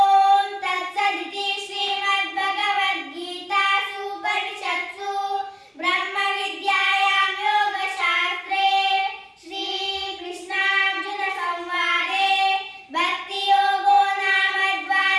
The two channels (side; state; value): both; identical; correlation 1.00